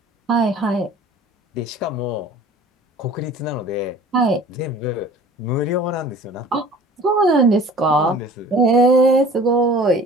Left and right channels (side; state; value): both; normal; correlation 0.46